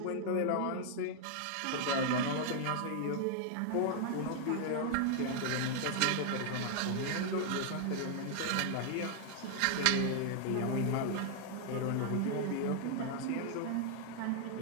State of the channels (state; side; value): different; both; correlation 0.00